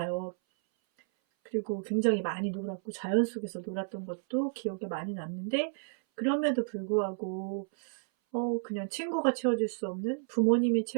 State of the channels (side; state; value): left; silent; 57 dB below the other